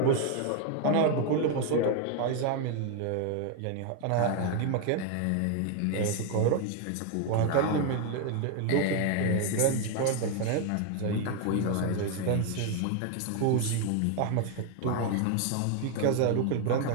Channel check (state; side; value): different; both; correlation 0.01